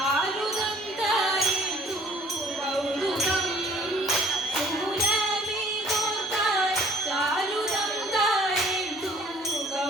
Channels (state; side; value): normal; both; correlation 0.55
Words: തായേന്ദു കൗതുകം സൂനമേ തോർത്താൽ ചാരുദം തായേന്ദു